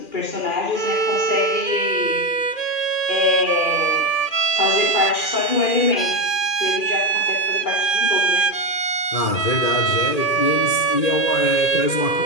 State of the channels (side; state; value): right; late; 2.4 ms